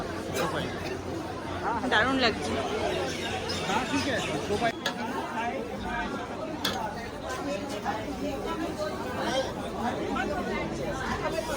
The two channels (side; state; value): both; identical; correlation 1.00